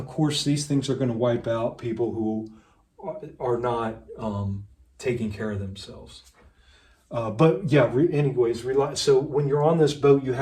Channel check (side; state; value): both; identical; correlation 1.00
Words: course, these things are going to wipe out people who are not taking care of themselves. But yeah, anyways, so when you're on this boat, you